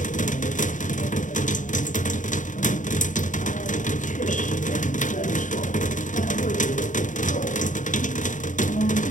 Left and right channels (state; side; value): late; right; 0.37 ms